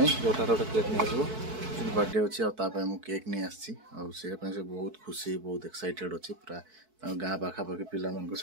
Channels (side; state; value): left; late; 4.6 ms